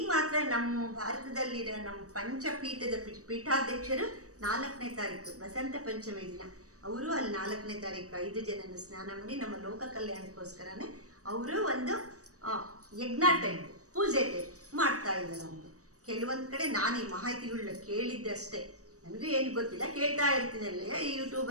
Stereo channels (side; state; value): left; late; 0.66 ms